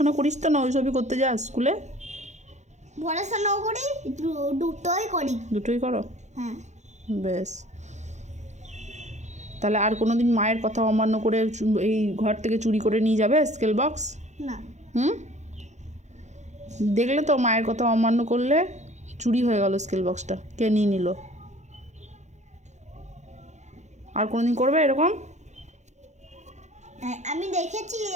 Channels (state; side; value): late; left; 0.34 ms